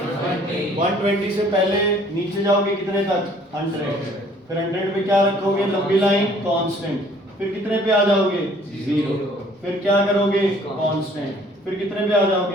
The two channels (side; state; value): both; normal; correlation 0.57